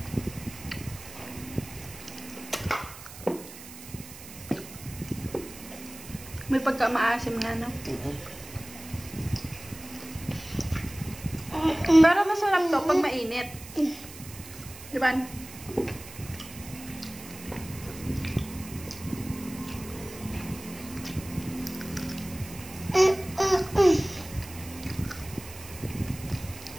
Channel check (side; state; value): right; noise; hiss, 15 dB below the sound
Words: May pagka-maasim nga, no? Pero masarap to pag mainit. Di ba?